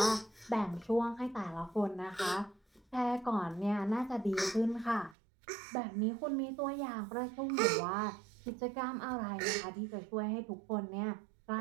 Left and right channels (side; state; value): left; drops out; at 5.2 s